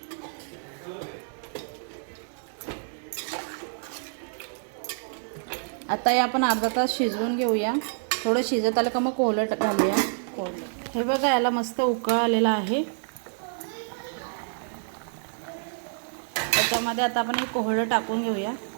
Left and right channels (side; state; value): left; silent; digital silence